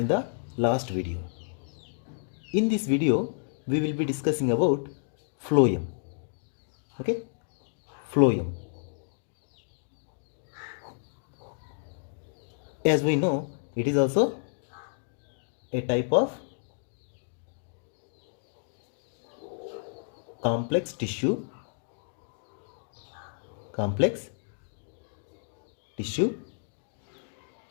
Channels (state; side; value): silent; right; digital silence